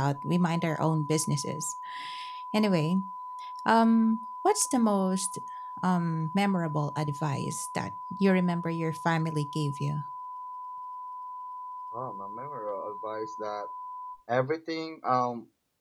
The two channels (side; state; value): both; identical; correlation 1.00